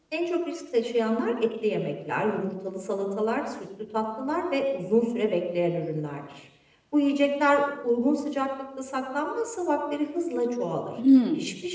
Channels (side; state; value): both; identical; correlation 1.00